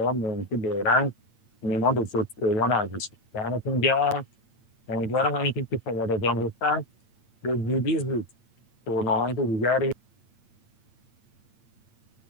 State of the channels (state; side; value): late; right; 8.8 ms